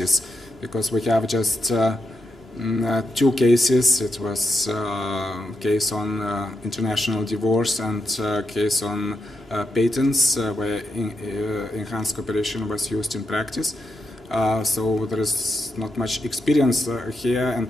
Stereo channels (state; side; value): normal; both; correlation 0.84